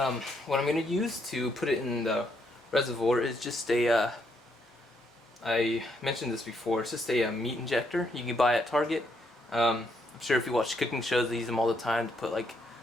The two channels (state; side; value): normal; both; correlation 0.75